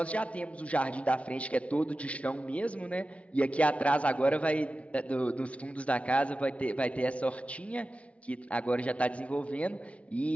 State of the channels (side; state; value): right; late; 0.063 ms